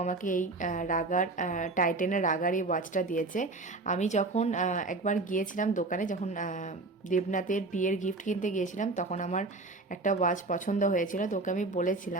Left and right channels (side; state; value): left; quieter; 3.4 dB